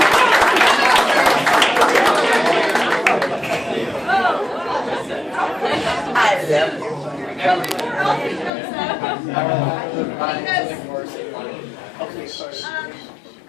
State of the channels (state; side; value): drops out; right; at 8.5 s